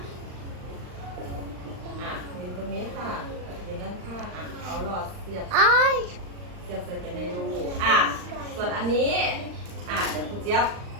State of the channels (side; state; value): left; late; 39 ms